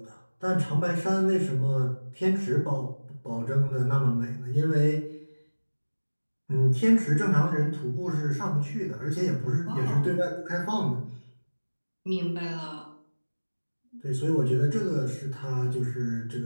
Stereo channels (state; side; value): inverted; both; correlation -1.00